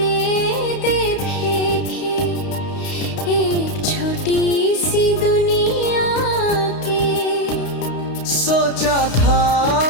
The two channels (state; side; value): late; right; 32 ms